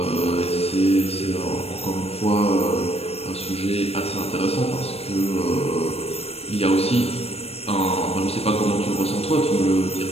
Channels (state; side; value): late; right; 0.29 ms